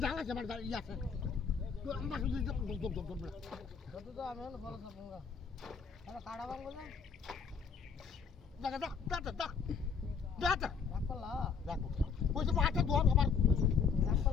জাল আছে আমার ইয়া আছে তো আমরা শুধু কত তো আমি হলো ফল সব গঙ্গা আরে কাড়া বাং বলে দেখা দা রাখলা দেখো ওই যে পাটা দোর আমার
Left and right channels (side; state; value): right; quieter; 6.1 dB